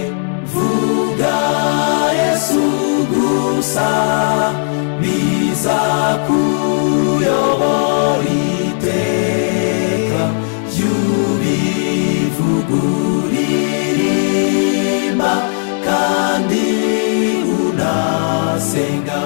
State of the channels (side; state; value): right; silent; digital silence